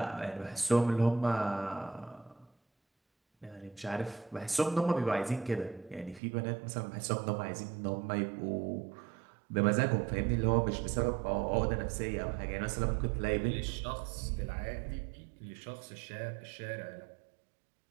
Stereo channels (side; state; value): left; drops out; at 6.2 s